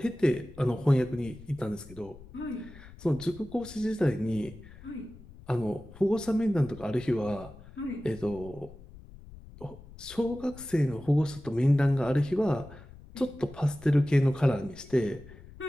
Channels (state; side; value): noise; left; rumble, 19 dB below the sound